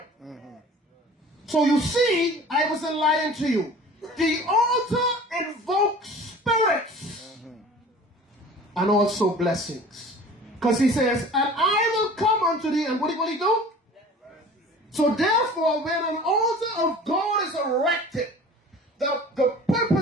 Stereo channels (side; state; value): both; normal; correlation 0.43